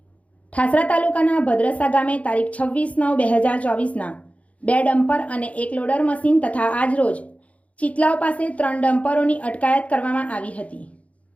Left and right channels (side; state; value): right; late; 0.066 ms